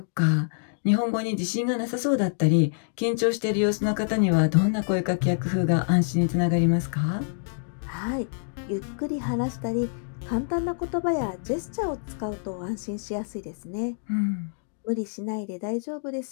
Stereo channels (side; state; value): right; silent; digital silence